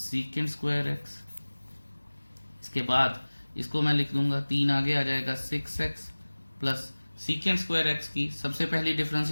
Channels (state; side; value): inverted; both; correlation -1.00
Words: square x. इसके बाद इसको मैं लिख दूंगा, 3 आगे आ जाएगा 6x plus secant square x की सबसे पहली